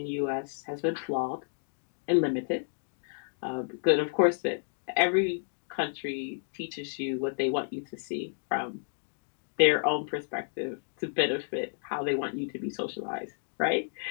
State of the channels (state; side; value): silent; right; digital silence